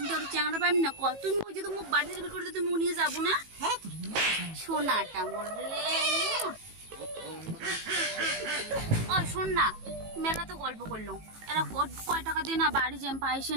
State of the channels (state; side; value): late; left; 18 ms